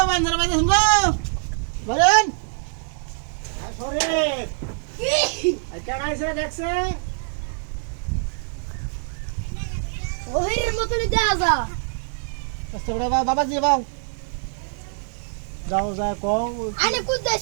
বান্দরা বাজে শুনবো বলেন শরীফ কেন আইছে দেখছে ওহির মতনই দেয়া যা কষ্ট করে বাবাজি বাও যাও যায় কও আনে কুদাই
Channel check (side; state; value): left; silent; 56 dB below the other